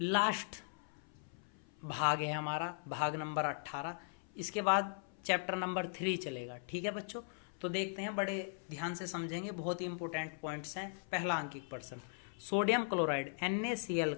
लास्ट भाग है, हमारा भाग नंबर 18। इसके बाद चैप्टर नंबर 3 चलेगा। ठीक है बच्चों, तो देखते हैं, बड़े ध्यान से समझेंगे, बहुत ही इंपॉर्टेंट पॉइंट्स हैं। पहला आंकिक प्रश्न, सोडियम क्लोराइड NaCl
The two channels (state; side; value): silent; right; 52 dB below the other